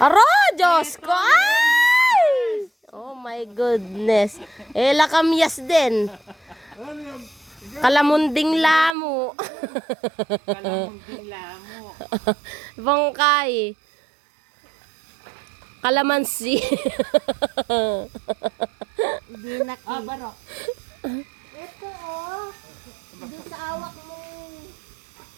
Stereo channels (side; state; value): left; drops out; at 9.0 s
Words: Aro, Diyos ko! Ay! Oh my goodness. Lakamyas din. Ano yan? Kalamunding lamo. Kalamunding lamo. Bangkay. Kalamansi. Hindi na Barok. Ito oh. Doon sa awak mo.